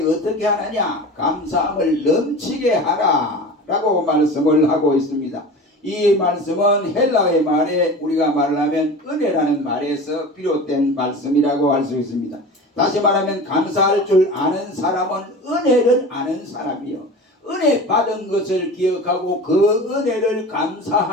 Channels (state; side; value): normal; both; correlation 0.34